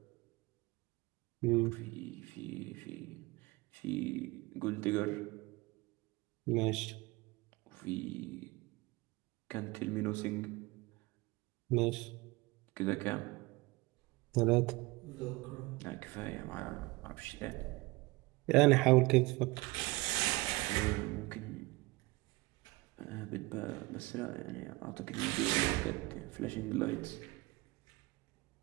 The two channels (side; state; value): left; quieter; 22.8 dB